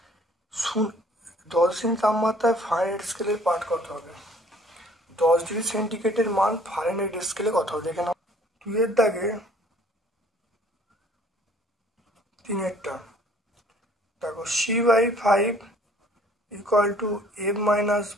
10 ডিগ্রি তাপমাত্রায় ফারেনহাইট স্কেলের পাঠ কত হবে? 10 ডিগ্রি সেন্টিগ্রেডের মান ফারেনহাইট স্কেলে কত হবে দেখে নাও। 2 এর দাগে 3 দেখো, C/5 equal to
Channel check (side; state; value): both; normal; correlation 0.57